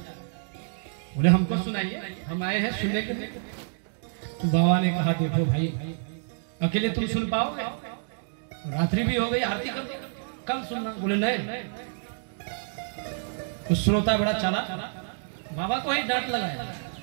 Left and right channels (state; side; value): silent; left; digital silence